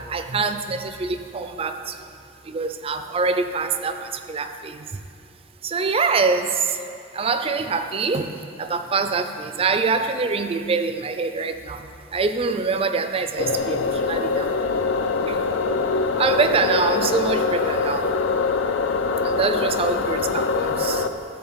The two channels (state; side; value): normal; both; correlation -0.03